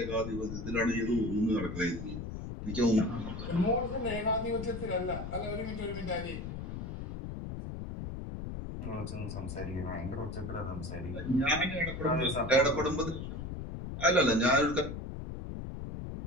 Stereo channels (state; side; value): noise; left; rumble, 7 dB below the sound